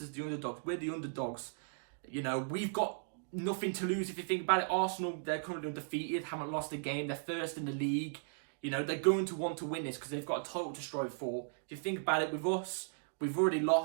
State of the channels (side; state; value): left; silent; digital silence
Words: the underdogs. We're the underdogs. You know, we've got nothing to lose. If you think about it, Arsenal, they're currently undefeated, haven't lost a game. They're first in the league. You know, they're going to want to win this because they've got a title to strive for. If you think about it, with us, we've already